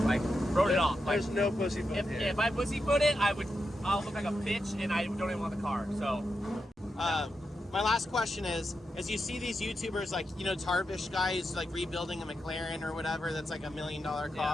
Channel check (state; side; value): normal; both; correlation 0.87